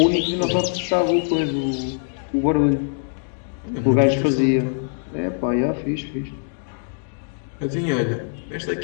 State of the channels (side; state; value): right; silent; digital silence